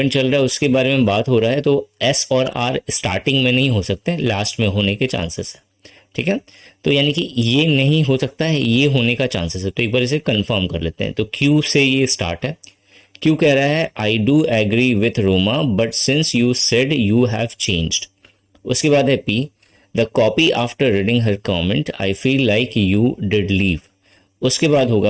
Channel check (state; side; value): identical; both; correlation 1.00